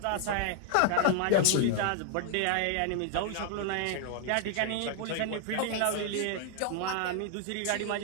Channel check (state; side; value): different; both; correlation 0.00